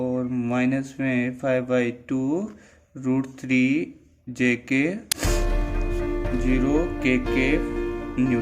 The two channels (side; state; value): both; identical; correlation 1.00